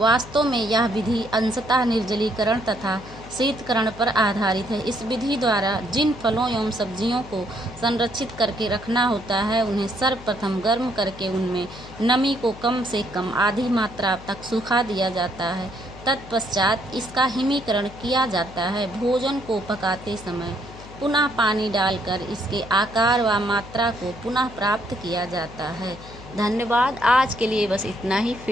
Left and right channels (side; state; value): left; noise; hum, 16 dB below the sound